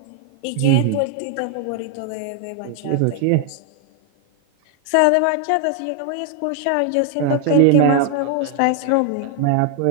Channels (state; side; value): different; both; correlation 0.00